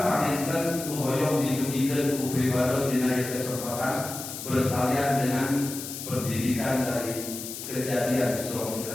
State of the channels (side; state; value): left; noise; hiss, 9 dB below the sound